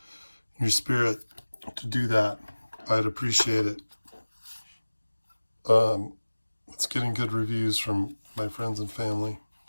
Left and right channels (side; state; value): both; inverted; correlation -1.00